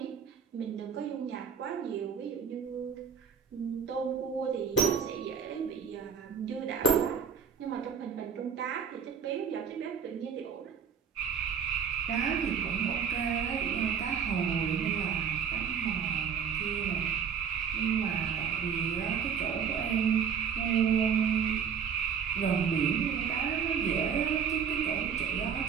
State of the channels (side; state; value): left; quieter; 7.1 dB